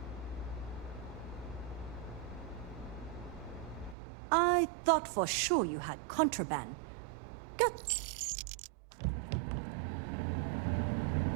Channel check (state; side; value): drops out; left; at 4.0 s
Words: I thought for sure you had contraband. Good.